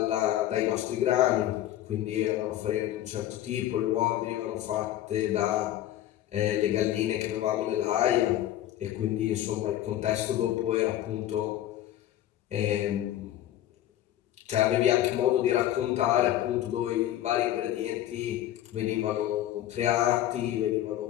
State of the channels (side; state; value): right; quieter; 12.8 dB